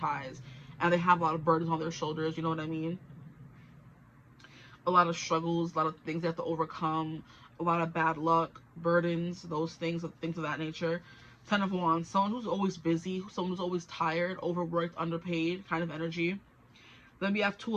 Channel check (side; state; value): both; identical; correlation 1.00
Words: and they have a lot of burdens on their shoulders, you know what I mean? A lot of struggles, a lot of things they have to overcome, a lot of bad luck, burdens, those things of that nature. Ten of Wands, someone who's always busy, someone who's always tired, overworked, underpaid kind of energy. Then we have Two